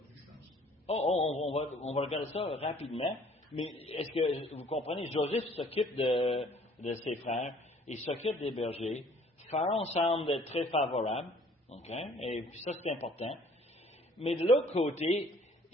je pense. On va regarder ça rapidement. Mais est-ce que vous comprenez, Joseph s'occupe de ses frères, il s'occupe des bergers. Pharaon semble être très favorable, okay? Et puis ça c'est important. Mais de l'autre côté,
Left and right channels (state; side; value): normal; both; correlation 0.57